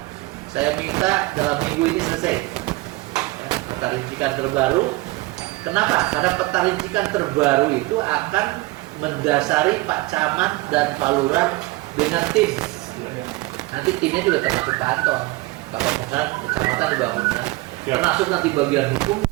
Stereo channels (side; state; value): left; quieter; 21.2 dB